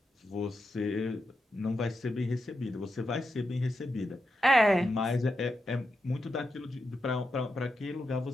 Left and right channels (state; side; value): normal; both; correlation 0.87